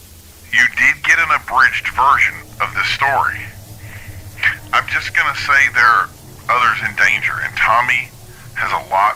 you did get an abridged version of this story. I'm just gonna say there are others in danger, and Tommy has a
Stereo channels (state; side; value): identical; both; correlation 1.00